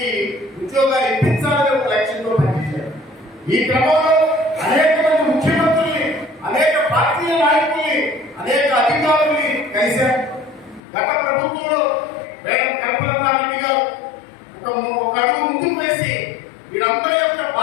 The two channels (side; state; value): right; drops out; at 10.8 s